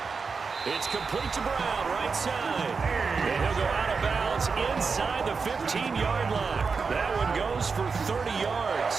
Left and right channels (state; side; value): quieter; left; 5.0 dB